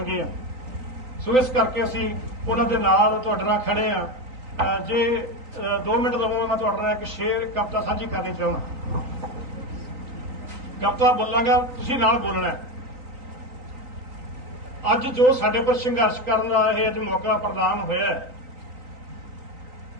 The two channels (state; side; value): late; left; 3.9 ms